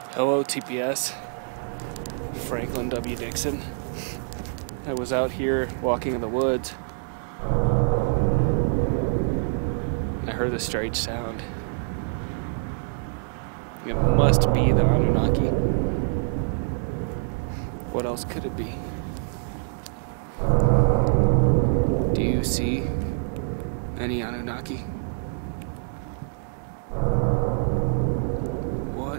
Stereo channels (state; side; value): silent; left; digital silence